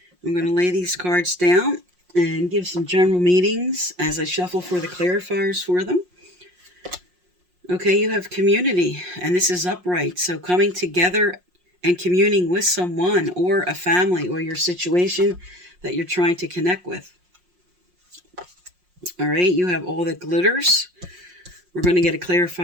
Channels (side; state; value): left; late; 5.6 ms